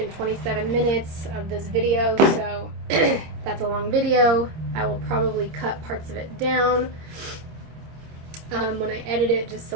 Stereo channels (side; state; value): left; late; 26 ms